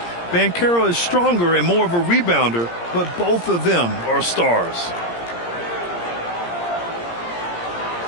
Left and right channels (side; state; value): right; late; 17 ms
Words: Banchero is stronger and more of a rebounder, but both of them are stars.